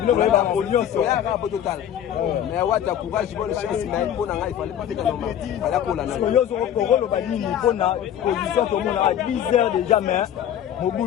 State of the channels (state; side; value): quieter; right; 10.2 dB